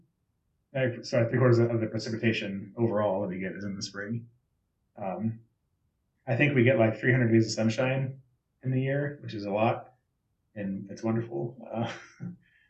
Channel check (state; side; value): identical; both; correlation 1.00